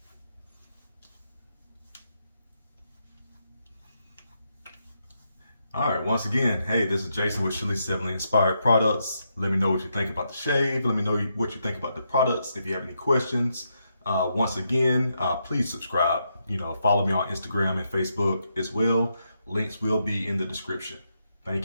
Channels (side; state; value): both; inverted; correlation -0.81